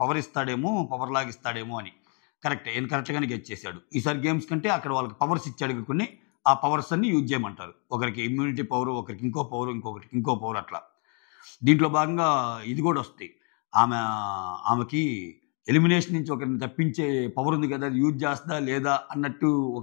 పవర్ ఇస్తాడేమో, పవర్ లాగిస్తాడేమో అని. కరెక్ట్గానే గెట్ చేశాడు. ఈసారి గేమ్స్ కంటే అక్కడ వాళ్ళకి పవర్స్ ఇచ్చాడు కొన్ని, ఆ పవర్స్ అన్ని యూజ్ చేయమంటారు. ఒకరికి ఇమ్యూనిటీ పవర్, ఒకరికి ఇంకో పవర్, ఇంకొకరికి ఇంకో పవర్, అట్లా. దీంట్లో భాగంగా ఇది కూడా వస్తాయి. ఆమెకి ఎలిమినేషన్ నుంచి ఒకరిని తప్పించే పవర్ ఉంది కదా, అది యూజ్ చేస్తుందా లేదా అన్నట్టు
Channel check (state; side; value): quieter; right; 38.4 dB